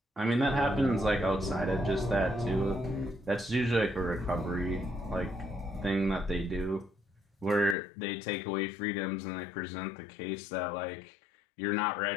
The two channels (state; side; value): drops out; right; at 7.8 s